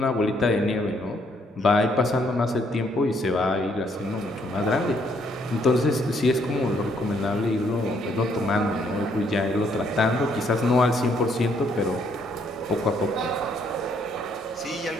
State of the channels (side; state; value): both; normal; correlation 0.69